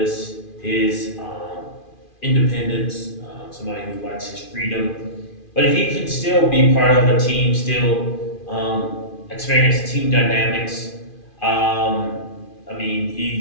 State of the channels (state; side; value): late; right; 2.4 ms